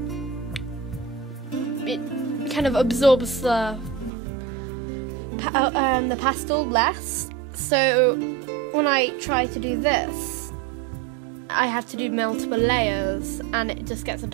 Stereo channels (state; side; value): drops out; left; at 4.1 s